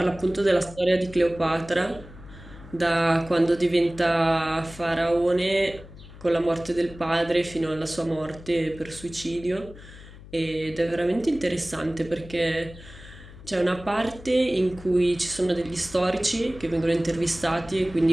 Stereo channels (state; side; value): noise; left; hum, 18 dB below the sound